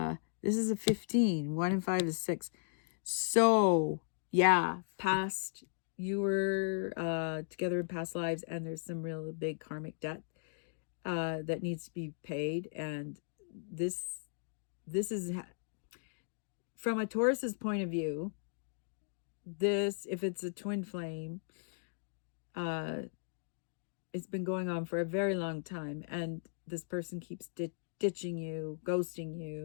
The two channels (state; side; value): silent; right; digital silence